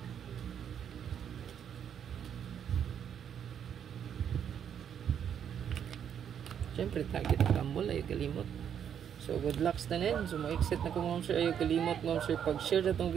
siyempre target ang rumble ayaw kalimot. So good luck sa tanin. So ma-exit na ko mga sir, ayaw kalimot mga sir pag-share na itong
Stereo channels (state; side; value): quieter; left; 8.6 dB